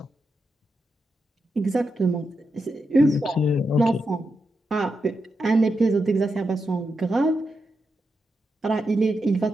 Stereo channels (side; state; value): both; normal; correlation 0.86